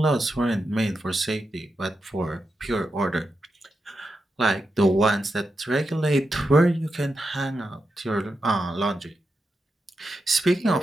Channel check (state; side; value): normal; both; correlation 0.88